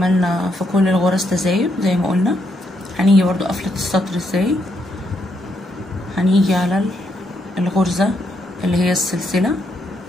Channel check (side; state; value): both; normal; correlation 0.77